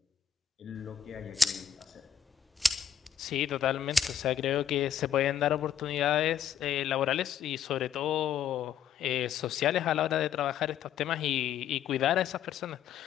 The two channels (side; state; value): right; quieter; 8.6 dB